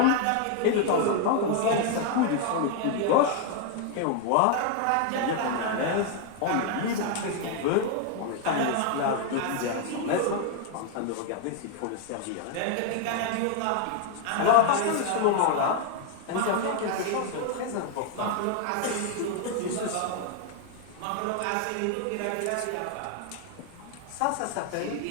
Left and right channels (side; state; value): both; different; correlation 0.00